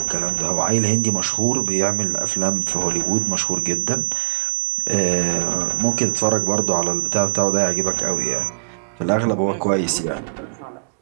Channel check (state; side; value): silent; left; digital silence